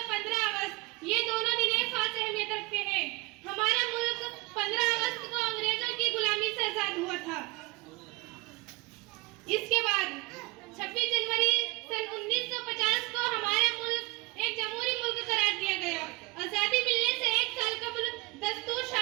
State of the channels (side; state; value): left; quieter; 24.8 dB